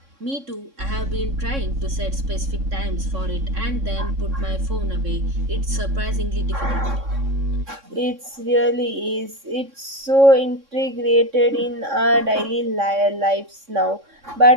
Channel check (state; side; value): late; left; 3.6 ms